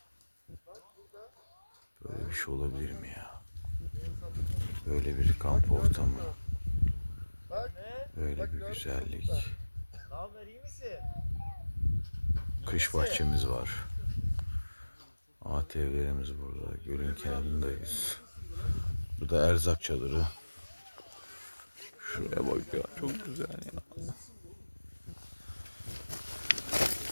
Böyle bir şey olabilir mi ya? Böyle bir kamp ortamı. Böyle bir güzellik. Kış bahçemiz var. ATV'lerimiz burada. Gölün kenarındayız. Burada erzak çadırı. Şuraya bak ya, çok güzel ya.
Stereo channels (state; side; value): inverted; both; correlation -1.00